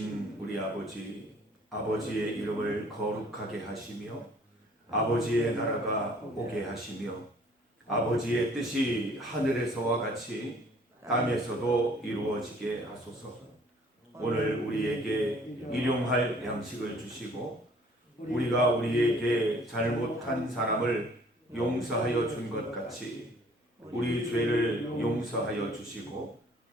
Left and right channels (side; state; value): both; normal; correlation 0.56